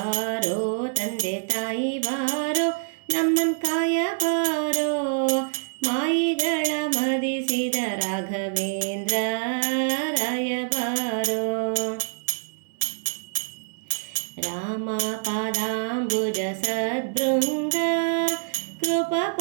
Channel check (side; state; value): left; silent; digital silence